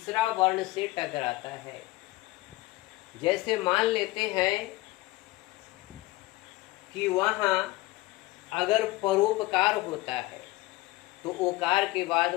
वर्ण से टकराता है। जैसे मान लेते हैं कि वहाँ अगर परोपकार होता है तो ओकार के बाद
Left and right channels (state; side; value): quieter; right; 19.6 dB